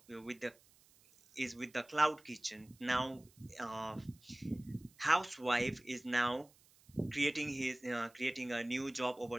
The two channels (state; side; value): noise; right; hiss, 28 dB below the sound